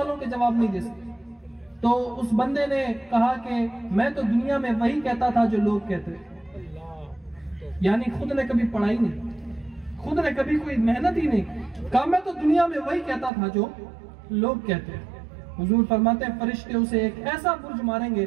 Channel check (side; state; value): left; drops out; at 13.3 s